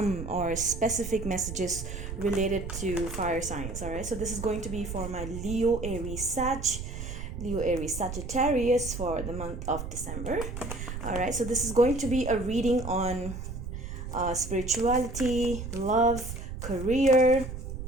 or specific messages related to fire signs. All right, so this is going to be for my Leo, Aries, Leo, Aries, Sagittarius for the month of December. All right, so this is going to be a reading on spirituality, love, career.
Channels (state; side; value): noise; right; rumble, 7 dB below the sound